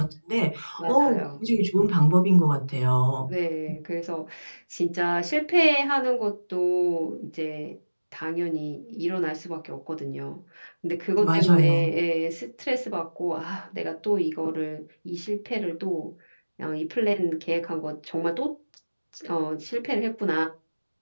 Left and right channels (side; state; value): both; inverted; correlation -1.00